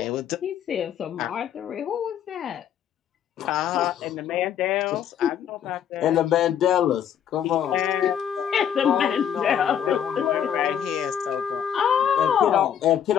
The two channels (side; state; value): right; quieter; 9.1 dB